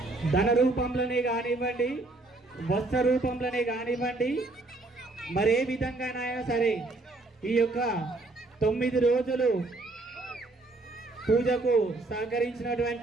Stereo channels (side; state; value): left; quieter; 3.1 dB